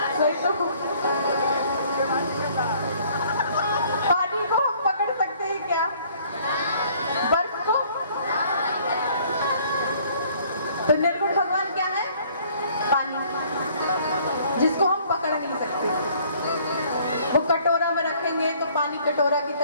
वही तो। पानी को हम पकड़ सकते हैं क्या? बर्फ को? तो निर्गुण भगवान क्या है? पानी, जिसको हम पकड़ नहीं सकते। वो कटोरा में रखेंगे तो पानी कटोरा की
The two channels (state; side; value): inverted; both; correlation -0.59